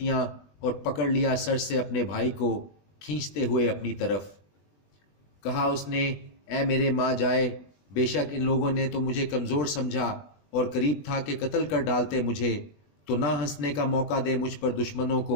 اور پکڑ لیا سر سے اپنے بھائی کو کھینچتے ہوئے اپنی طرف۔ کہا اس نے، اے میرے ماں جائے، بے شک ان لوگوں نے تو مجھے کمزور سمجھا اور قریب تھا کہ قتل کر ڈالتے مجھے، تو نہ ہنسنے کا موقع دے مجھ پر دشمنوں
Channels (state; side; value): late; right; 20 ms